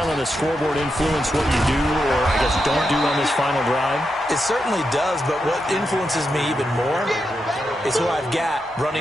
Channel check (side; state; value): both; normal; correlation 0.85